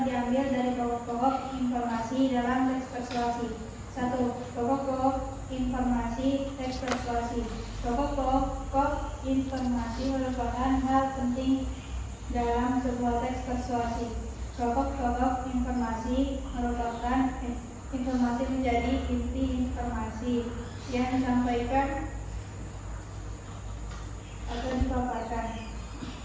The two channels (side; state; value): both; identical; correlation 1.00